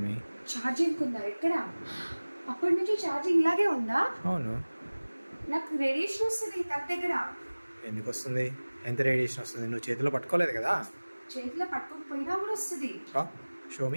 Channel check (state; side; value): inverted; both; correlation -1.00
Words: ఛార్జింగ్ ఉందా? ఎక్కడ? అప్పటి నుంచి ఛార్జింగ్ ఇలాగే ఉందా? అవును. నాకు రేడియేషన్ వస్తుంది తన దగ్గర. ఎందుకు వస్తుంది? ఎంత రేడియేషన్ వస్తుంది? నువ్వు చేతిలో పట్టుకోలేదు కదా. చేతిలో పట్టుకోకపోయినా కూడా వస్తుంది. Show